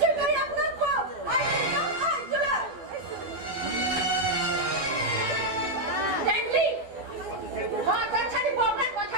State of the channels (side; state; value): left; late; 12 ms